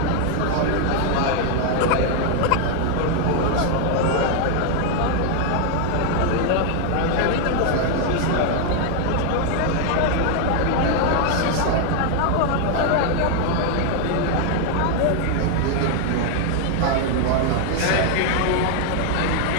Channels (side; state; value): both; different; correlation 0.00